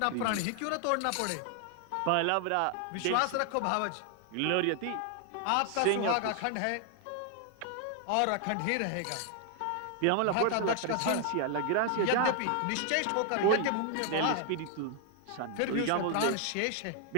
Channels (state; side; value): different; both; correlation 0.00